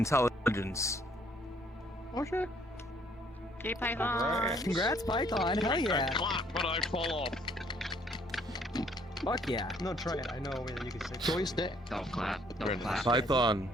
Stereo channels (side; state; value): both; normal; correlation 0.63